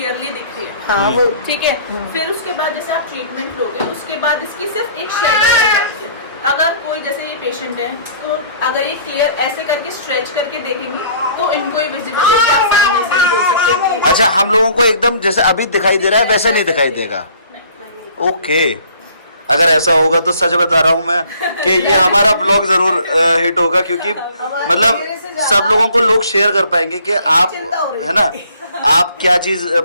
दिख रही है, हाँ वो ठीक है। फिर उसके बाद जैसे आप ट्रीटमेंट लोगे उसके बाद इसकी सिर्फ एक शेडो रह जाती है। अगर कोई जैसे ये पेशेंट है तो अगर ये क्लियर ऐसे करके स्ट्रेच करके देखेंगे तो इनको ही विजिबल है, कि आप सामने से नहीं बोल सकते कि अच्छा, हम लोगों को एकदम जैसे अभी दिखाई दे रहा है वैसे नहीं दिखाई देगा। ओके, अगर ऐसा होगा तो सच बता रहा हूँ मैं कि ये हमारा ब्लॉग जरूर हिट होगा, क्योंकि मतलब सब लोगों को लोग शेयर कर पाएंगे कि आप, है ना, आप क्या चीज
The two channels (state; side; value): inverted; both; correlation -0.56